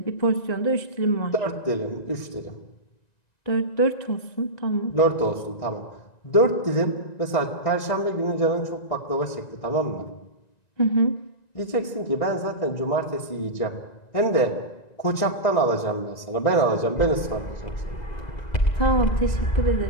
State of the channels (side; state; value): right; late; 1.9 ms